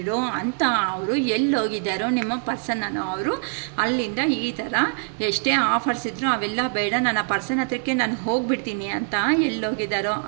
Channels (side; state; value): left; silent; 59 dB below the other